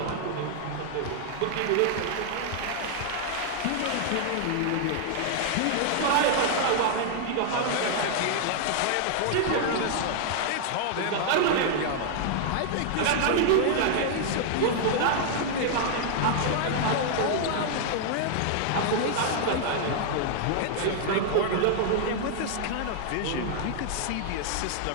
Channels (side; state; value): both; different; correlation 0.00